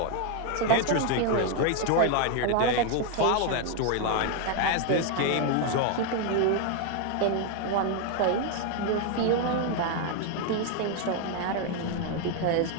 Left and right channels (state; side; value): different; both; correlation 0.01